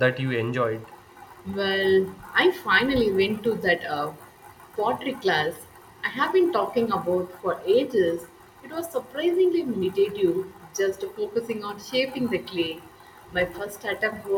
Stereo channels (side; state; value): both; identical; correlation 1.00